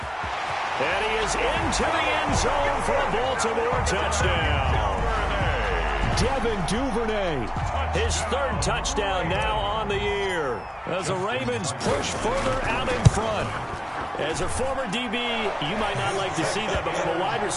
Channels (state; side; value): identical; both; correlation 1.00